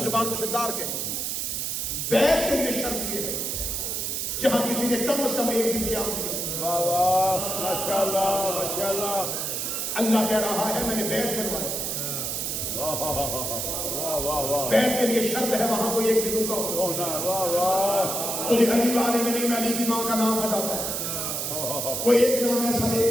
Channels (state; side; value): noise; right; hiss, 2 dB below the sound